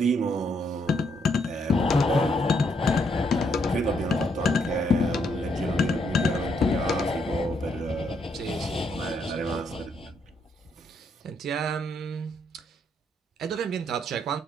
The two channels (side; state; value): both; normal; correlation 0.75